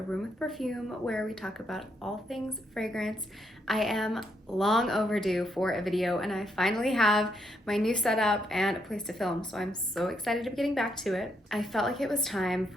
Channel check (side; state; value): both; normal; correlation 0.76